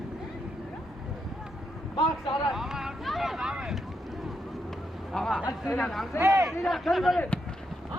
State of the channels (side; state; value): both; normal; correlation 0.81